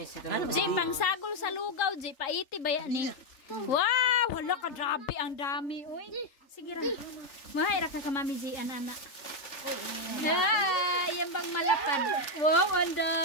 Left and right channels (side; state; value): right; late; 3.4 ms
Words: Ji, pangsagol sa lugaw, Ji. Paiti ba yan ni? Wow! Hala ka, grabe. Ang dami. Uy. Sige ra. Mahira ka Mami Ji, anak. Yan bang malapad? Wow, ang